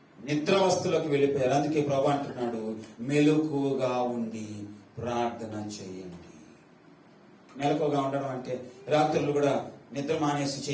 నిద్రావస్థలోకి వెళ్ళిపోయారు. అందుకే ప్రభు అంటున్నాడు, మెలకువగా ఉండి ప్రార్థన చేయండి. మెలకువగా ఉండడం అంటే రాత్రులు కూడా నిద్ర మానేసి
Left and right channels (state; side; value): identical; both; correlation 1.00